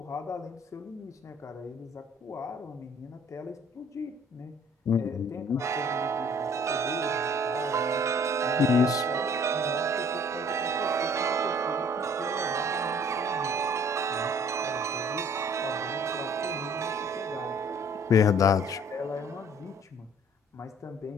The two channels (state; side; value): normal; both; correlation 0.56